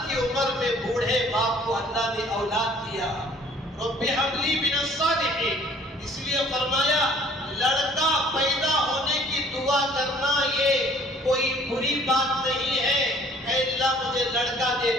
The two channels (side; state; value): both; normal; correlation 0.55